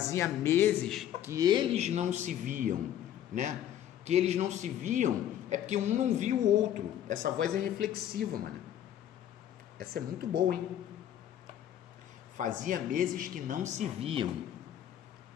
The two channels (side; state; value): right; quieter; 10.9 dB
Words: meses que eles não se viam, né? Que eles não se viam é porque um não viu o outro. Essa voz é reflexiva, mano. Essa é muito boa, hein? Fazia meses que não se viam.